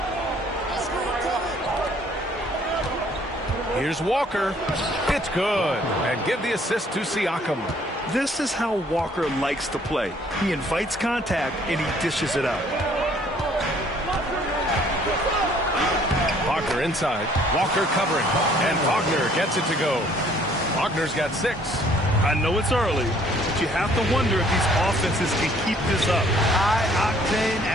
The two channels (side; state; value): both; normal; correlation 0.60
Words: Here's Walker. It's good. And give the assist to Siakam. This is how Walker likes to play. He invites contact and he dishes it out. Wagner inside. Walker covering. And Wagner gets it to go. Wagner's got 6. I know it's early, but you have to wonder if these offenses can keep this up. High-octane